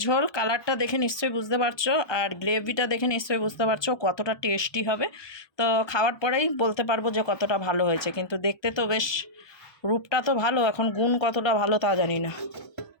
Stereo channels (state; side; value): late; right; 1.2 ms